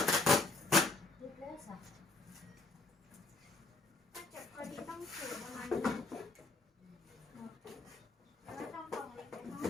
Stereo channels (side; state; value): right; quieter; 3.4 dB